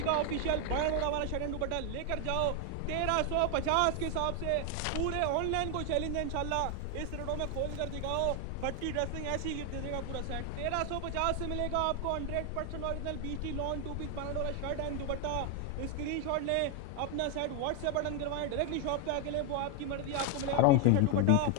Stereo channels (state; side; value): different; both; correlation 0.01